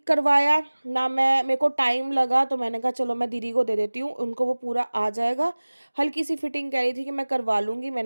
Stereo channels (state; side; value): inverted; both; correlation -1.00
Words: करवाया, ना मेरे को टाइम लगा। तो मैंने कहा चलो मैं दीदी को दे देती हूँ, उनको वो पूरा आ जाएगा। हल्की सी फिटिंग कह रही थी कि मैं करवा लूँगी,